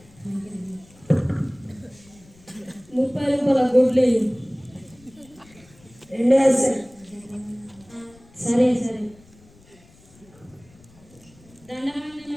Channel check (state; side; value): noise; left; rumble, 26 dB below the sound